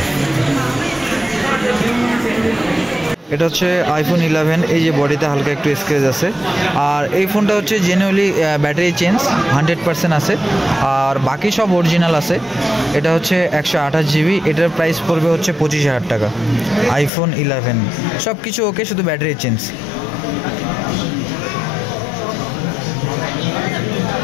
এটা হচ্ছে iPhone 11। এই যে বডিতে হালকা একটু স্ক্র্যাচ আছে। আর এই ফোনটা হচ্ছে জেনুইনলি ব্যাটারি চেঞ্জ 100% আছে, আর বাকি সব অরিজিনাল আছে। এটা হচ্ছে 128 GB। এটার প্রাইস পড়বে হচ্ছে 25,000 টাকা। iPhone 11 সব কিছু ওকে, শুধু ব্যাটারি চেঞ্জ।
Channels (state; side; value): drops out; right; at 17.1 s